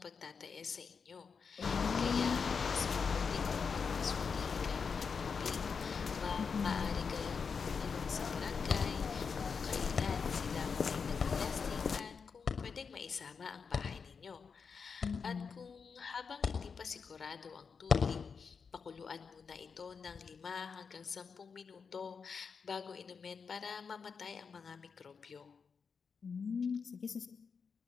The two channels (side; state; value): right; quieter; 5.7 dB